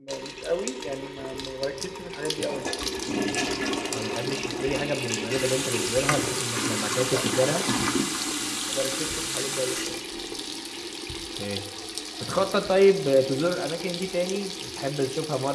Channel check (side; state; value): both; identical; correlation 1.00